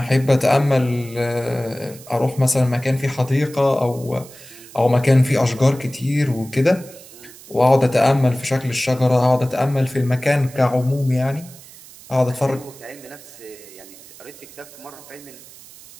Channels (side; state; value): right; noise; hiss, 20 dB below the sound